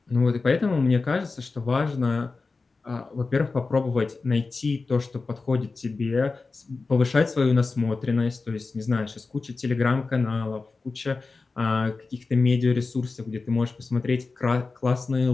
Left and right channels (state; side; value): quieter; right; 4.0 dB